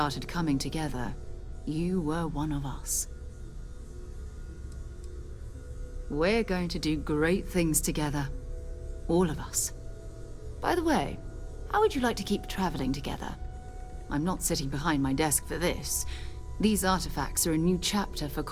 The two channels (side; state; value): both; identical; correlation 1.00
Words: coming together, you were one of us. We're going to do great things together. All of us. By the way, how would you like to keep traveling together? I'm not sitting behind my desk for this. These artifacts are a new chapter for